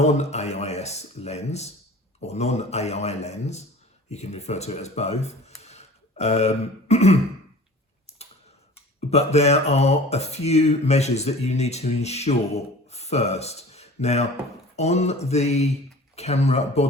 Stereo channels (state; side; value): normal; both; correlation 0.43